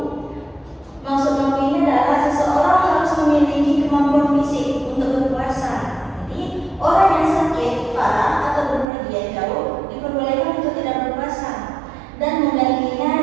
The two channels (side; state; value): left; drops out; at 8.8 s